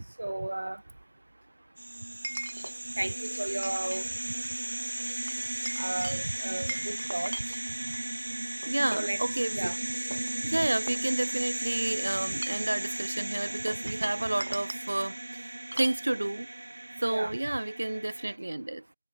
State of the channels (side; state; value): both; inverted; correlation -1.00